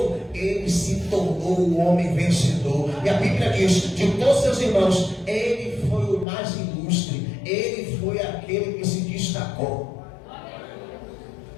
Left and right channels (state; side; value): drops out; right; at 6.2 s